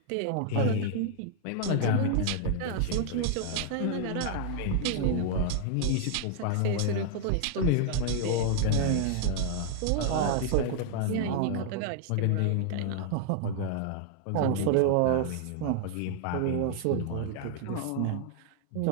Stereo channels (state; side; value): different; both; correlation 0.00